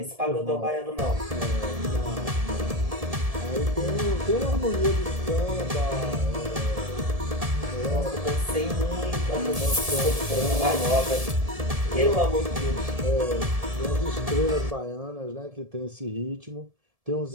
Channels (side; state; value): left; late; 1.7 ms